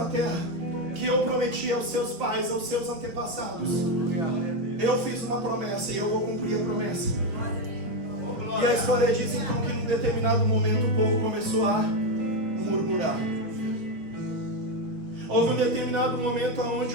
a terra que eu prometi aos seus pais, aos seus antepassados. Eu fiz uma promessa e eu vou cumprir a promessa. E a história diz então que num determinado momento o povo começou a murmurar. Houve um determinado momento onde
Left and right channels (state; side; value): late; left; 5.8 ms